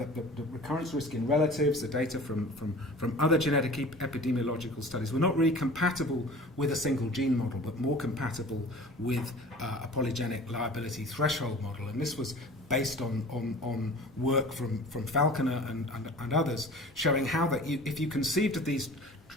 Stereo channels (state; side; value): normal; both; correlation 0.42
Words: recurrence risk in relatives, the data from other genetic epidemiological studies were not really compatible with a single gene model, but more compatible with a polygenic liability threshold model, and this was based on work from Falconer and others, showing how that if you conceived of these